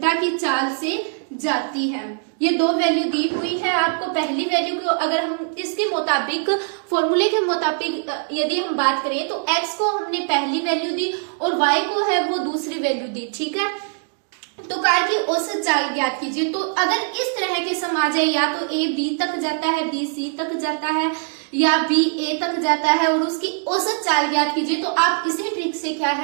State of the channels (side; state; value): left; silent; 59 dB below the other